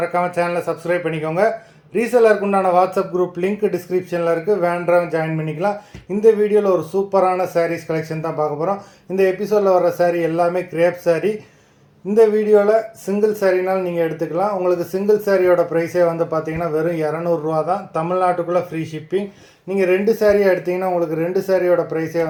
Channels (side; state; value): both; identical; correlation 1.00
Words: சேனலை சப்ஸ்கிரைப் பண்ணிக்கோங்க. ரீசெல்லருக்கு உண்டான வாட்ஸ்அப் குரூப் லிங்க் டிஸ்கிரிப்ஷனில் இருக்குது, வேண்டவங்க ஜாயின் பண்ணிக்கலாம். இந்த வீடியோவில் ஒரு சூப்பரான சாரீஸ் கலெக்ஷன் தான் பார்க்க போகிறோம். இந்த எபிசோடில் வர சாரீ எல்லாமே கிரேப் சாரீ. இந்த வீடியோவில் சிங்கிள் சாரீனால் நீங்கள் எடுத்துக்கலாம். உங்களுக்கு சிங்கிள் சாரியோட ப்ரைஸே வந்து பார்த்தீங்கன்னா வெறும் 200 தான். தமிழ்நாட்டுக்குள்ளே ஃப்ரீ ஷிப்பிங். நீங்கள் 2 சாரியாக எடுத்திங்கன்னா உங்களுக்கு 2 சாரியோட ப்ரைஸே